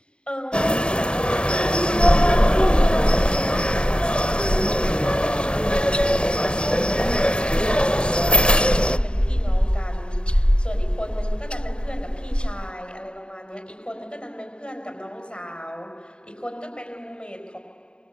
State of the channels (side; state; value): right; late; 0.051 ms